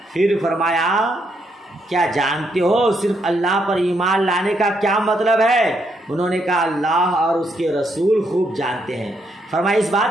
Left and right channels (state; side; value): normal; both; correlation 0.76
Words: پھر فرمایا کیا جانتے ہو صرف اللہ پر ایمان لانے کا کیا مطلب ہے؟ انہوں نے کہا اللہ اور اس کے رسول خوب جانتے ہیں. فرمایا اس